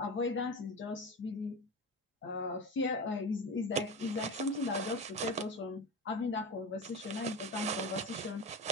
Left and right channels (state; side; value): normal; both; correlation 0.26